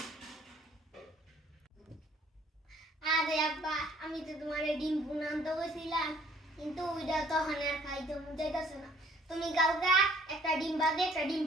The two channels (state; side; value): normal; both; correlation 0.59